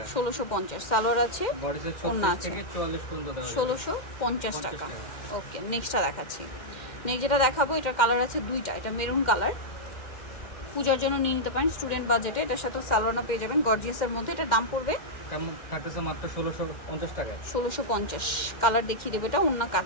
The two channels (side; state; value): right; late; 2.1 ms